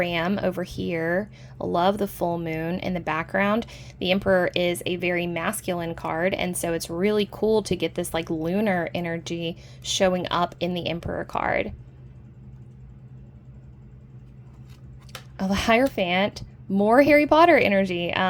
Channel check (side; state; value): both; identical; correlation 1.00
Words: over here. I love the full moon in the background. The Emperor is a very masculine card, and so it's really cool to get this like lunar energy showing up in the Emperor card. Oh, the Hierophant, more Harry Potter energy.